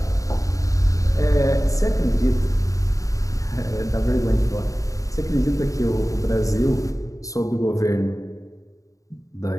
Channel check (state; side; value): late; right; 0.16 ms